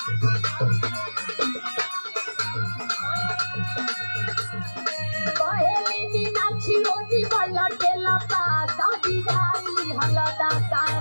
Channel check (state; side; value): inverted; both; correlation -1.00